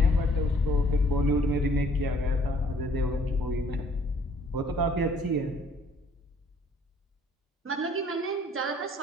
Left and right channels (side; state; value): both; normal; correlation 0.60